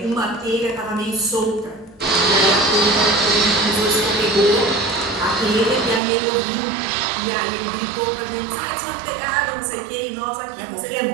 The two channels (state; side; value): drops out; left; at 6.0 s